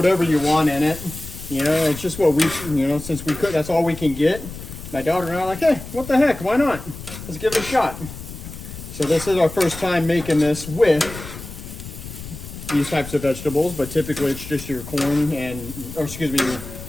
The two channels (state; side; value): noise; left; rumble, 12 dB below the sound